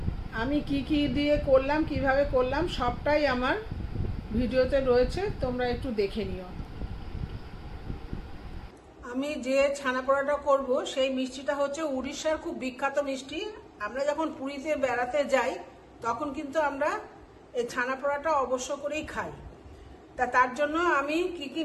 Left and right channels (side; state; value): both; identical; correlation 1.00